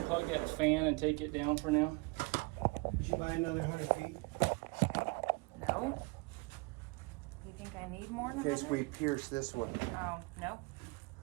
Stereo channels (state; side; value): quieter; left; 28.3 dB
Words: that fan and take it down for now? Did you buy another 100 feet? No. You think I need more In than case that? we pierce this one. Oh, no.